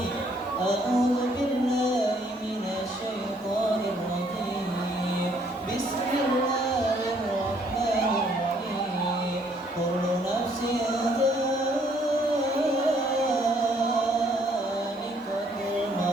A'udzu billahi minasyaitonir rajim. Bismillahirrahmanirrahim. Kullu nafsin dha'iqatul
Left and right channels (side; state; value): both; normal; correlation 0.65